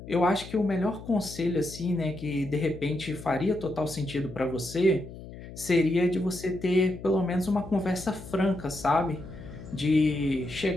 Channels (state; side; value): noise; left; hum, 14 dB below the sound